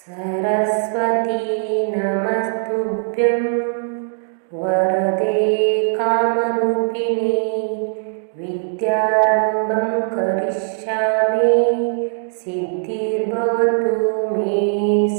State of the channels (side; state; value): left; silent; digital silence